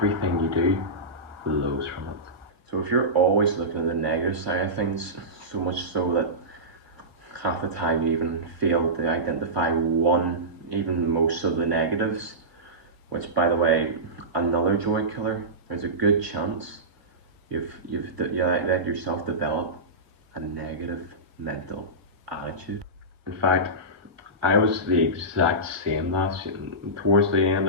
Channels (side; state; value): left; late; 1.6 ms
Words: you do flows from it. So if you're always looking at the negative side of things, so much so that half the time you even fail to identify one, even most of the negatives, which, by the way, another joy killer, there's a good chance you've let yourself develop a negative mental attitude. In fact, I was the exact same towards the end